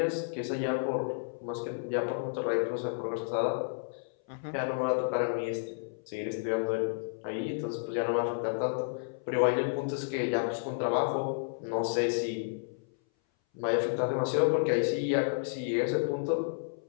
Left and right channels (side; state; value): right; silent; 57 dB below the other